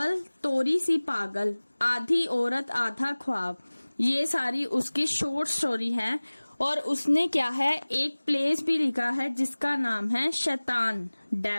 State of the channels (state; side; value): inverted; both; correlation -1.00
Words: तोरी सी पागल, आधी औरत आधा ख्वाब। ये सारी उसकी शॉर्ट स्टोरी है। और उसने क्या है एक प्लेस भी लिखा है जिसका नाम है शैतान,